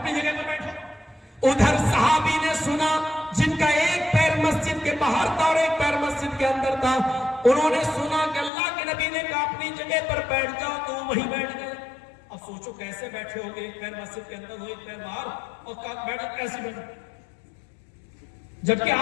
جگہ پر بیٹھو۔ ادھر صحابی نے سنا جن کا ایک پیر مسجد کے باہر تھا اور ایک پیر مسجد کے اندر تھا، انہوں نے سنا کہ اللہ کے نبی نے کہا اپنی جگہ پر بیٹھ جاؤ، تو وہیں بیٹھ گئے۔ اب سوچو کیسے بیٹھے ہو گے، ایک پیر مسجد کے اندر ہو ایک پیر باہر، اور بیٹھو کیسے بیٹھو؟ جبکہ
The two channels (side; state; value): right; drops out; at 8.5 s